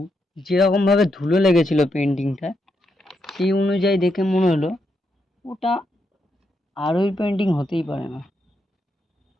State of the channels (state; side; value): normal; both; correlation 0.81